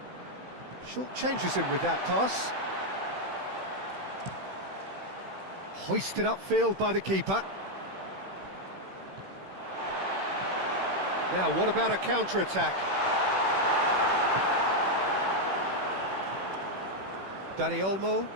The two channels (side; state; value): left; late; 16 ms